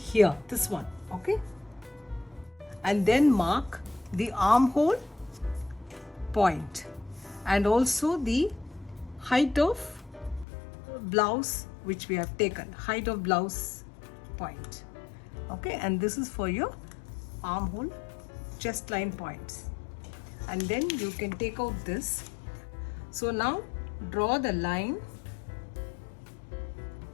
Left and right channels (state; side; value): drops out; right; at 10.5 s